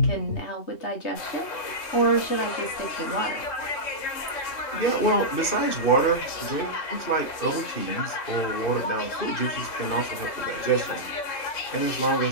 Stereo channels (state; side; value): late; right; 3.6 ms